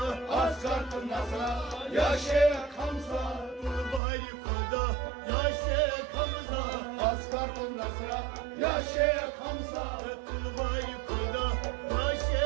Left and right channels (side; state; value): left; drops out; at 4.0 s